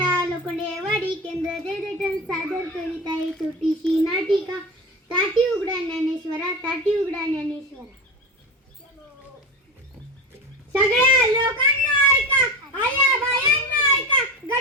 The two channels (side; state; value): both; normal; correlation 0.25